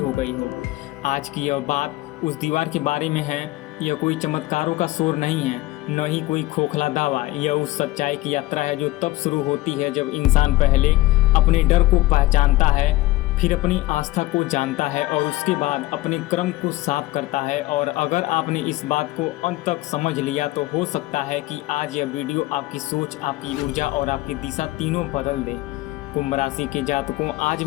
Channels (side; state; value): right; quieter; 18.4 dB